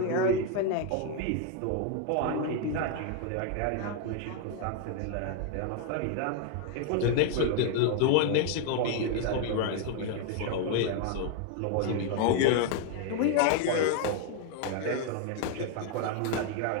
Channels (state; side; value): different; both; correlation 0.01